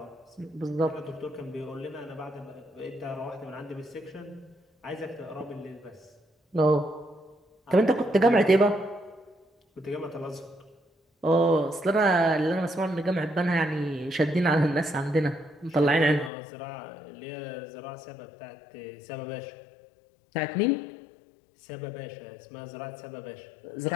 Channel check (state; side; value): drops out; right; at 16.3 s